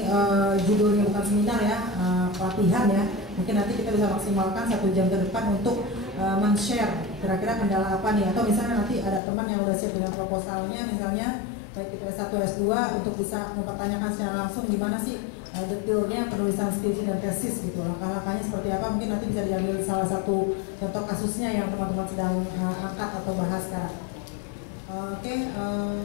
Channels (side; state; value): right; drops out; at 9.2 s